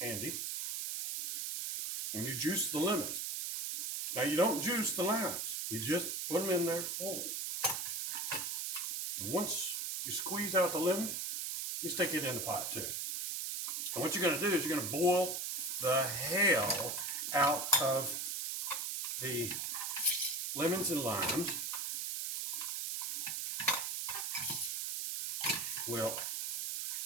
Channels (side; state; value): right; noise; hiss, 2 dB below the sound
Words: and you juice the lemons. Now you don't juice the limes, you just put them in there whole. And once you squeeze out the lemon, you stick it in the pot too. And what you're going to do is you're going to boil the hell out of the lemons and limes. Well,